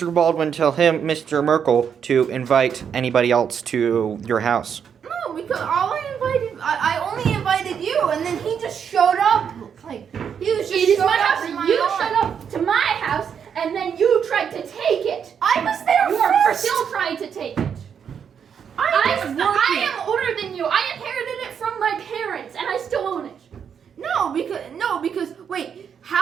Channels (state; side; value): quieter; left; 7.6 dB